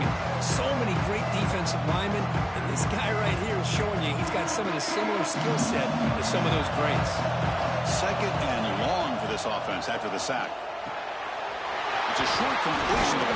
and so many great defensive linemen. And this guy right here is showing you he's got some of the similar skill set to some of those greats. Second and long for this offense after the sack. It's a short completion to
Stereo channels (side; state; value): both; identical; correlation 1.00